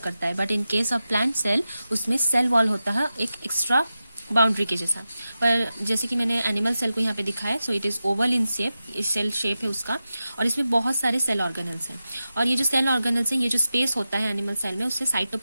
है, but in case of plant cell उसमें सेल वॉल होता है एक एक्स्ट्रा बाउंड्री के जैसा. पर जैसे कि मैंने एनिमल सेल को यहाँ पे दिखाया, so it is oval in shape, cell shape है उसका, और इसमें बहुत सारे सेल ऑर्गेनल्स हैं. और ये जो सेल ऑर्गेनल्स हैं, ये जो स्पेस होता है एनिमल सेल में, उससे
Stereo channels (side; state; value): both; inverted; correlation -0.92